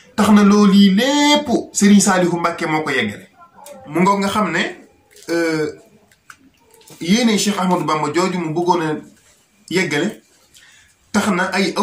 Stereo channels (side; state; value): both; identical; correlation 1.00